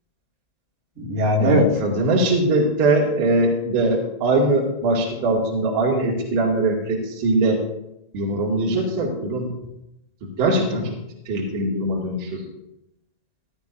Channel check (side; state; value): right; late; 1.9 ms